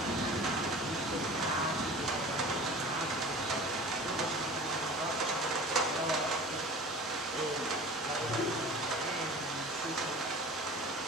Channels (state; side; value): normal; both; correlation 0.39